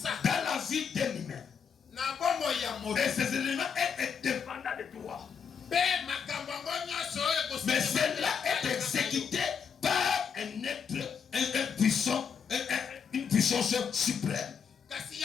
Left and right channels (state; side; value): quieter; right; 6.7 dB